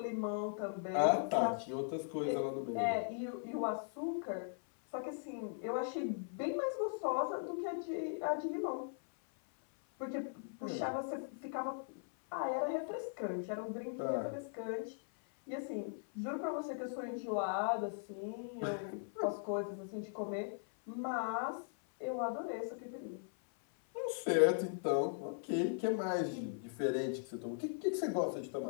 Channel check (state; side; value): silent; right; 52 dB below the other